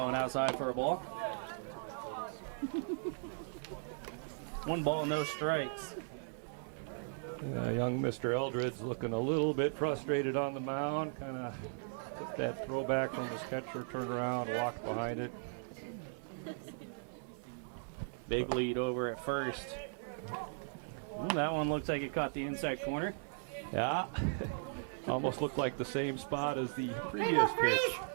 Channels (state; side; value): silent; left; 53 dB below the other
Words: and outside for a ball. 1 ball, no strikes. Young Mr. Eldred's looking a little bit frustrated on the mound. Kind of took that throwback from his catcher, turned around, walked behind it. Big lead over at first. Well, that one looks like it caught the inside corner. Yeah, almost looked like the same spot as the previous pitch.